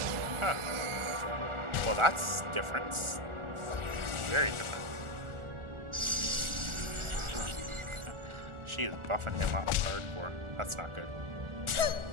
Huh. Well, that's different. Very different. She is buffing him up hardcore. That's not good.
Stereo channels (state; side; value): late; left; 1.4 ms